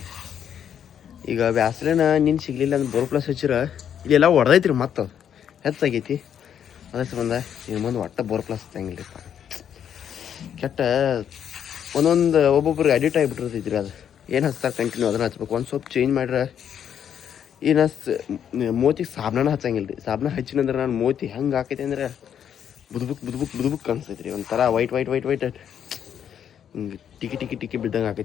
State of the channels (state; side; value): quieter; right; 8.9 dB